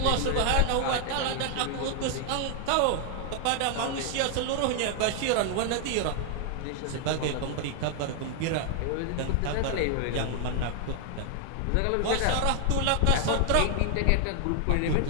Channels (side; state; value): both; different; correlation 0.00